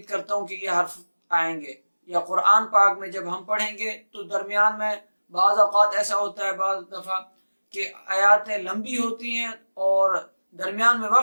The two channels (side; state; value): both; inverted; correlation -1.00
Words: करता हूँ कि ये हर्फ आएंगे, या कुरान पाक में जब हम पढ़ेंगे तो दरमियान में बाज़ औक़ात ऐसा होता है बाज़ दफ़ा कि आयातें लंबी होती हैं और दरमियान में